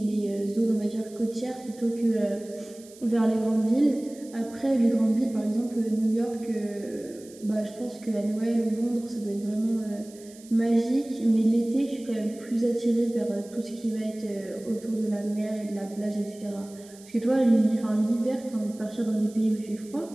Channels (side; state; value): right; noise; hiss, 22 dB below the sound